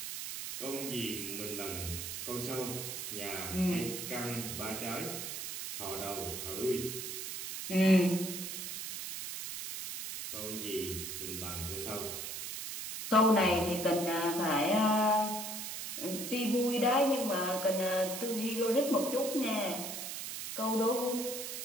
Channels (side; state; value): right; noise; hiss, 6 dB below the sound